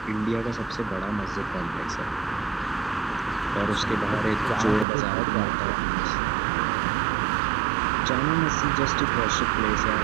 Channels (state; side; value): drops out; left; at 4.9 s